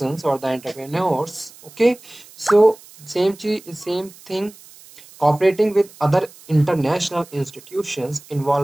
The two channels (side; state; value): right; noise; hiss, 22 dB below the sound